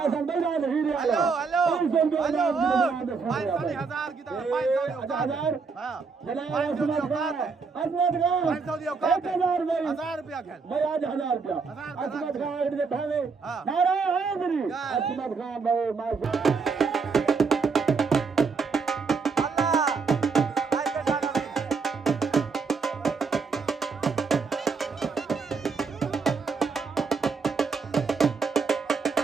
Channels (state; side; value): quieter; left; 4.9 dB